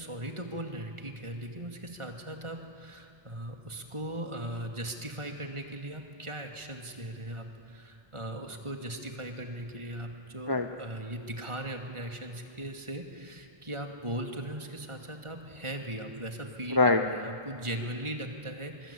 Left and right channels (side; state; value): left; late; 1.4 ms